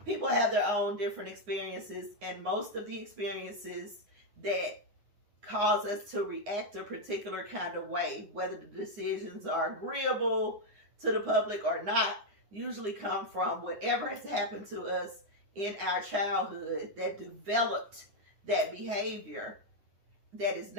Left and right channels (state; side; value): late; left; 9.8 ms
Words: people have their own different experiences, and most of the experiences that cause us to react a particular kind of way, whether the decisions are agreeable to the public or not, usually come from whatever has happened to us in our childhood that developed that behavior that is